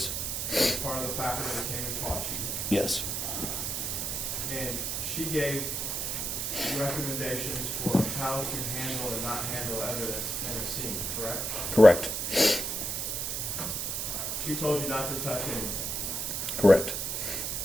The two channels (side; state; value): right; noise; hiss, 1 dB below the sound